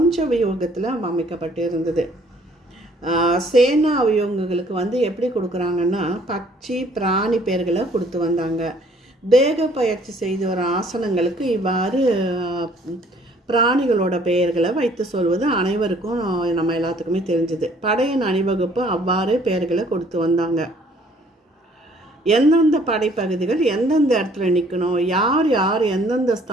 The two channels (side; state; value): both; normal; correlation 0.60